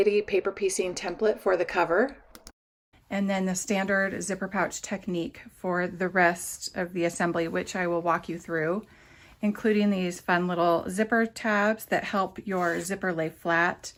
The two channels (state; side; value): identical; both; correlation 1.00